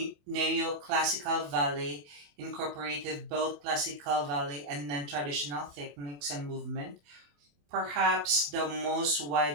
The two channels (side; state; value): left; late; 28 ms